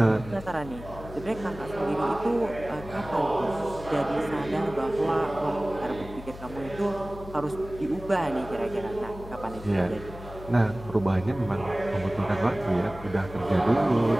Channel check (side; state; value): left; noise; hum, 14 dB below the sound